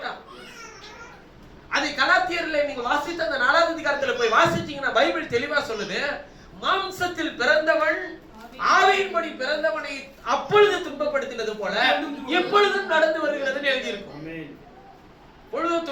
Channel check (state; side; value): identical; both; correlation 1.00